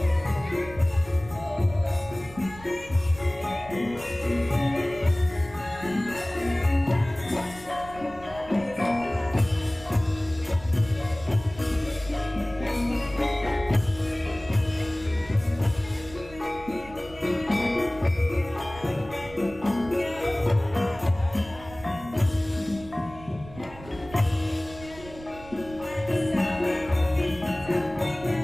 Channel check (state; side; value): noise; right; rumble, 18 dB below the sound